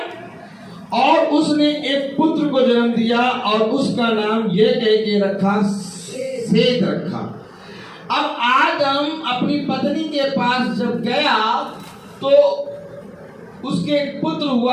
और उसने एक पुत्र को जन्म दिया और उसका नाम यह कह के रखा, सेत रखा। अब आदम अपनी पत्नी के पास जब गया तो उसके एक पुत्र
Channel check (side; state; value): both; identical; correlation 1.00